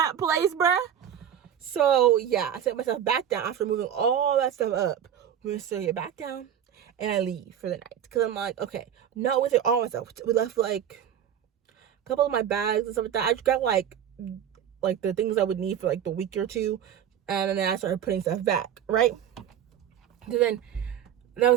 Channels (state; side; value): quieter; left; 9.5 dB